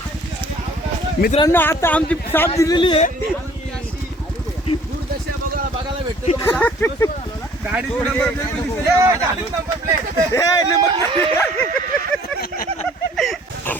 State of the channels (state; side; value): normal; both; correlation 0.55